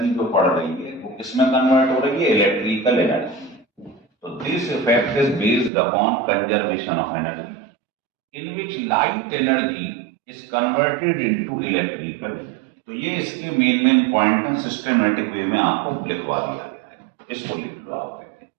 जो पड़ रही है वो किसमें कन्वर्ट हो रही है, इलेक्ट्रिकल एनर्जी। तो this effect is based upon conservation of energy in which light energy is converted into electrical. तो ये इसके मेन पॉइंट है, सिस्टमेटिक वे में आपको लिखवा दिया गया है, इसको लिख लो आप।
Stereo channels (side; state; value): left; drops out; at 5.7 s